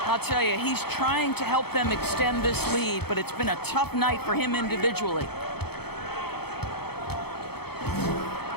I'll tell you, he's trying to help them extend this lead, but it's been a tough night for him individually.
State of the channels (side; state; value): right; late; 0.97 ms